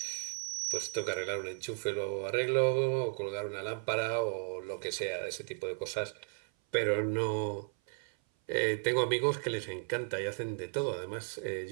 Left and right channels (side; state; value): left; silent; 55 dB below the other